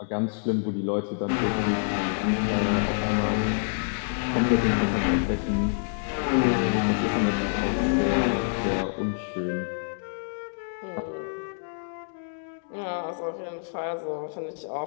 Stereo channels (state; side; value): silent; right; digital silence